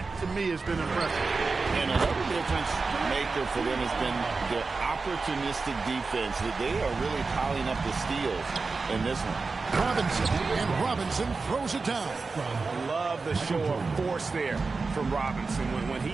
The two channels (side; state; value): left; quieter; 4.2 dB